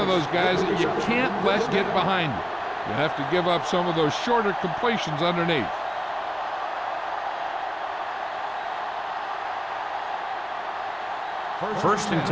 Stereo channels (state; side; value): identical; both; correlation 1.00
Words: those guys that you can't let get behind you. You have to give up some of those shorter completions underneath. First and